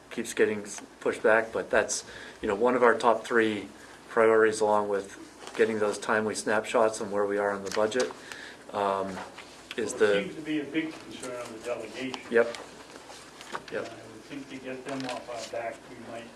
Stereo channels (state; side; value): identical; both; correlation 1.00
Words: keeps getting pushed back. But that's one of our top 3 priorities, along with getting those timely snapshots on where we are on the budget. It seems to be a big concern on the delegation. Yep. I would think to get them off our back, we might